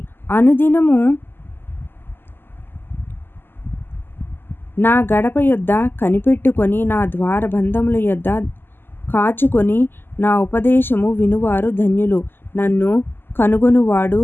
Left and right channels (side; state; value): right; late; 0.10 ms